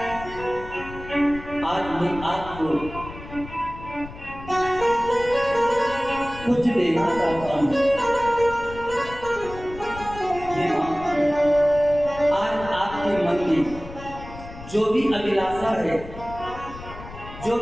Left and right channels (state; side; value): noise; left; rumble, 14 dB below the sound